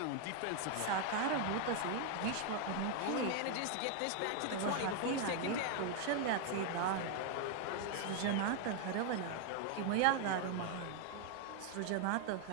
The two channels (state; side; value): different; both; correlation 0.00